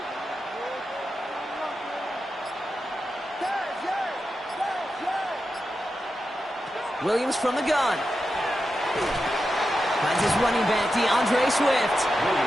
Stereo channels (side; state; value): both; normal; correlation 0.89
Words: Williams from the gun. Finds his running back, DeAndre Swift.